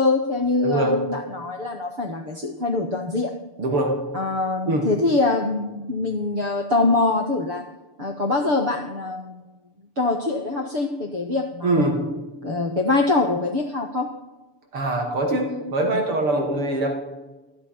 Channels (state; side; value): late; left; 6.9 ms